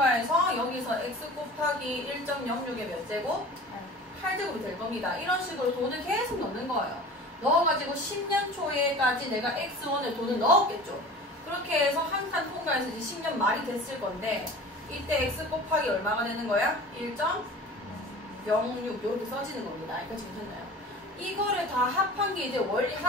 여기서 x 곱하기 1.06에 몇 제곱? 8제곱이 될 겁니다. 이런 식으로 돈을 계속 넣는 거예요. 넣어가지고 10년 초에까지 내가 x1에 돈을 넣었겠죠. 그렇게 해서 한 칸 통과해서 이제 10년 말이 됐을 건데 이때 x 곱하기 얼마가 되는 거야? 1.06 이렇게 써지는 겁니다. 여기까지 괜찮나요? 이거를 다 합한 게 이제 원리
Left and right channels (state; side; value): normal; both; correlation 0.40